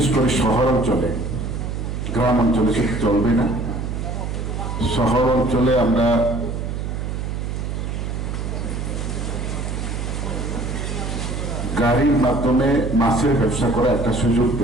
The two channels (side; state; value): right; noise; hum, 4 dB below the sound